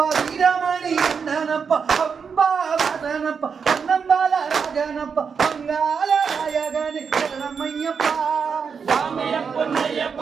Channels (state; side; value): quieter; left; 6.1 dB